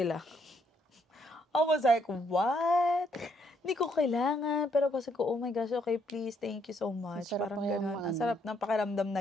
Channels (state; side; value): normal; both; correlation 0.72